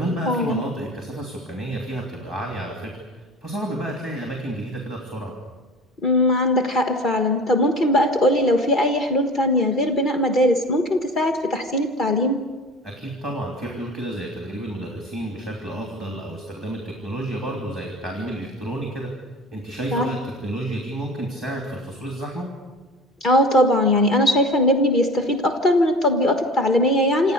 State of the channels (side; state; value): both; normal; correlation 0.37